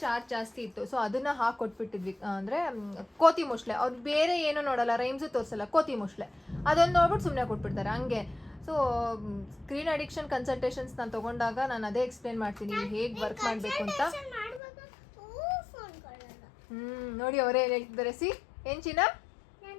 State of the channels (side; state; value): right; drops out; at 14.6 s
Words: ಚಾರ್ಜ್ ಜಾಸ್ತಿ ಇತ್ತು. ಸೊ ಅದನ್ನು ಹಾಕೊಟ್ಬಿಟ್ಟಿದ್ವಿ. ಅಂದರೆ ಕೋತಿ ಮೊಸಳೆ, ಅವ್ರು ಬೇರೆ ಏನೂ ನೋಡಲ್ಲ, ರೈಮ್ಸು ತೋರಿಸಲ್ಲ, ಕೋತಿ ಮೊಸಳೆ ಅದೊಂದು ನೋಡ್ಬಿಟ್ಟು ಸುಮ್ಮನೆ ಕೊಟ್ಬಿಡ್ತಾರೆ ಹಂಗೆ. ಸೊ ಸ್ಕ್ರೀನ್ ಅಡಿಕ್ಷನ್ ಕನ್ಸಲ್ಟೇಷನ್ಸ್ ನಾನು ತೊಗೊಂಡಾಗ ನಾನು ಅದೇ ಎಕ್ಸ್ಪ್ಲೇನ್ ಮಾಡ್ತೀನಿ ಹೇಗೆ ವರ್ಕ್ ಮಾಡಬೇಕು ಅಂತ. ನೋಡಿ ಅವರೇ ಏನು ಹೇಳ್ತಿದ್ದಾರೆ. ಏನು ಚಿನ್ನ?